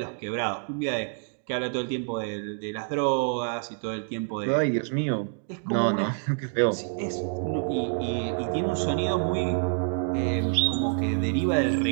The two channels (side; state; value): left; silent; 60 dB below the other